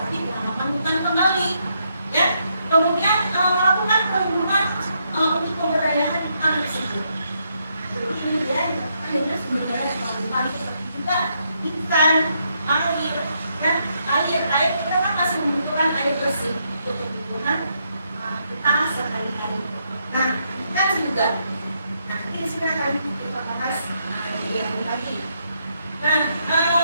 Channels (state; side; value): inverted; both; correlation -0.77